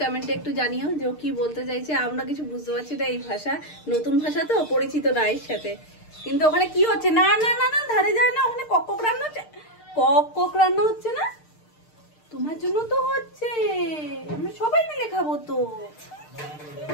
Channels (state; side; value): late; right; 6.6 ms